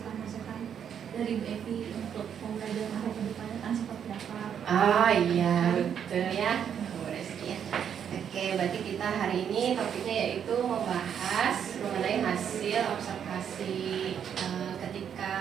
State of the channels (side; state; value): left; quieter; 8.4 dB